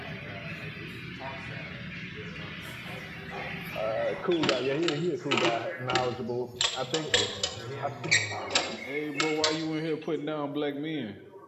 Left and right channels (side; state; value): both; identical; correlation 1.00